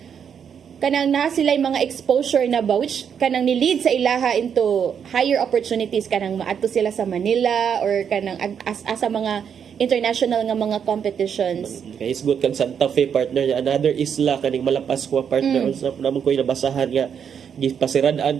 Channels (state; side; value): quieter; left; 7.7 dB